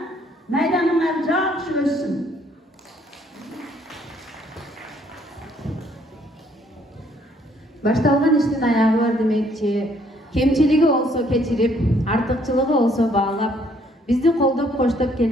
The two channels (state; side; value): normal; both; correlation 0.65